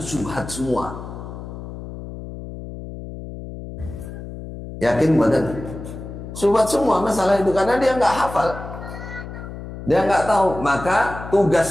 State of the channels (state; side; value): noise; left; hum, 11 dB below the sound